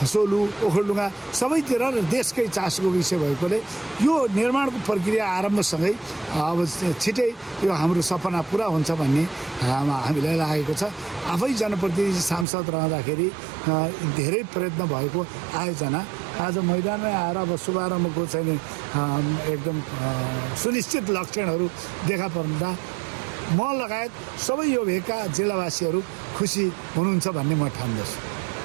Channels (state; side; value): drops out; left; at 12.5 s